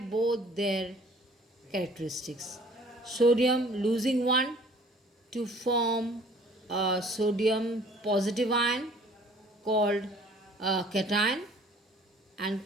their characteristics. Sodium losing 1 to form a sodium positive ion called a cation, and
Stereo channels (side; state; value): both; normal; correlation 0.54